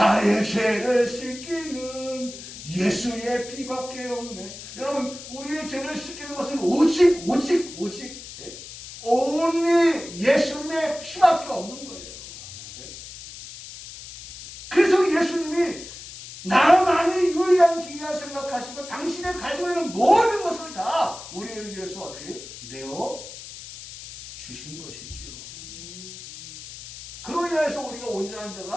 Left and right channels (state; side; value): noise; left; hiss, 13 dB below the sound